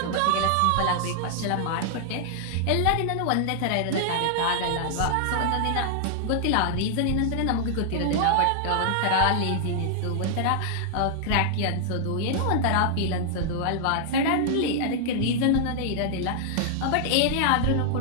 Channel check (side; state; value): both; different; correlation -0.01